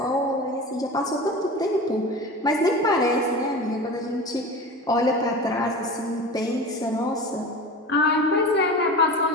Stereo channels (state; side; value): normal; both; correlation 0.32